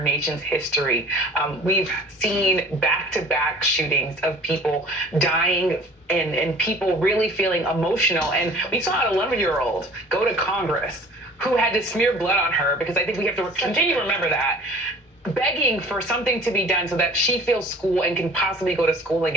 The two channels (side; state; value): both; normal; correlation 0.45